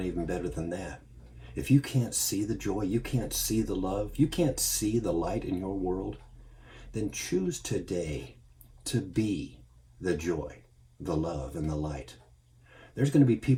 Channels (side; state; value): both; identical; correlation 1.00